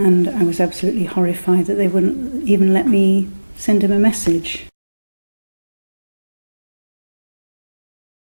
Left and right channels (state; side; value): inverted; both; correlation -1.00